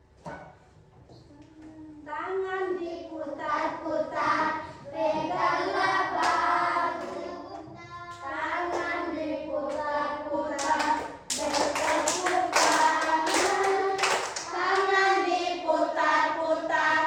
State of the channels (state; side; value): identical; both; correlation 1.00